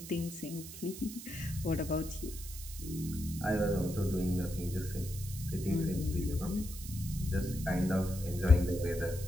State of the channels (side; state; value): right; noise; hiss, 12 dB below the sound